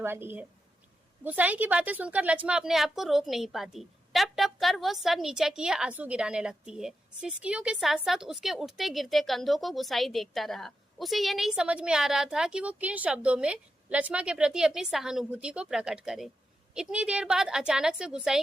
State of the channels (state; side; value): normal; both; correlation 0.87